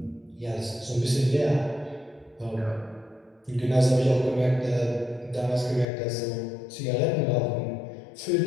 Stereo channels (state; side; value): drops out; right; at 5.9 s